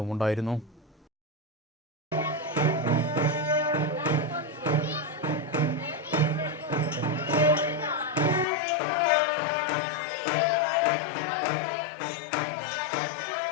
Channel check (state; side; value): drops out; right; at 8.5 s